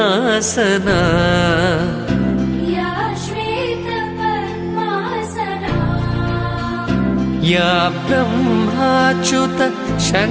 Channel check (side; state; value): both; identical; correlation 1.00